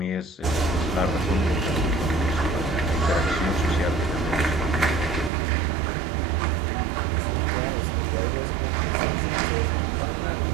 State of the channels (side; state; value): left; drops out; at 5.3 s